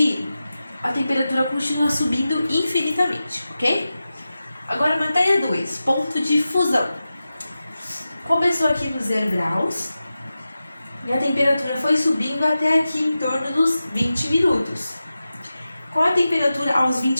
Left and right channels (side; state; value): both; inverted; correlation -0.93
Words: a temperatura continua subindo infinitamente, ok? Agora, matéria 2, ponto de fusão. Começou aqui no 0 graus e a temperatura foi subindo até aqui em torno dos 20 minutos. Qual a temperatura aos